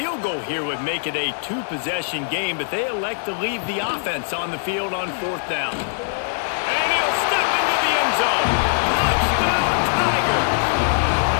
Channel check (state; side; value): silent; right; digital silence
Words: goal here would make it a 2-possession game, but they elect to leave the offense on the field on fourth down. And he'll step into the end zone. Touchdown, Tigers!